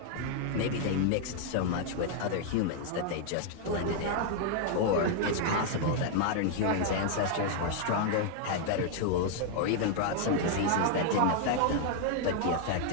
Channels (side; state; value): both; different; correlation 0.00